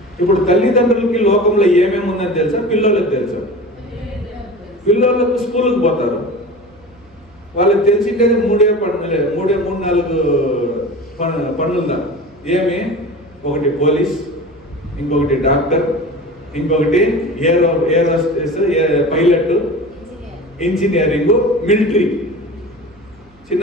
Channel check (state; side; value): noise; right; hum, 29 dB below the sound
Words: ఇప్పుడు తల్లిదండ్రులకి లోకంలో ఏమేమి ఉందని తెలుసా? పిల్లలకు తెలుసా? పిల్లలకు స్కూల్కి పోతారు, వాళ్ళకి తెలిసిండేది మూడు నాలుగు పనులుందా? ఏమి? ఒకటి పోలీస్, ఇంకొకటి డాక్టర్, ఇంకొకటి ఏరోస్పేస్ పైలట్, ఇంజనీరింగ్, మిలిటరీ.